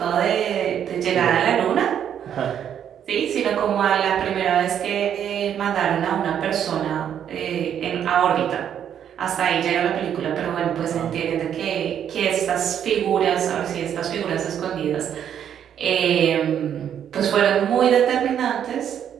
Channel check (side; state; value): left; quieter; 9.2 dB